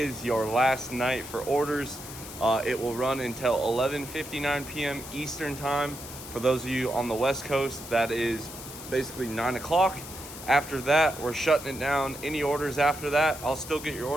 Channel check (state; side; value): noise; left; hiss, 13 dB below the sound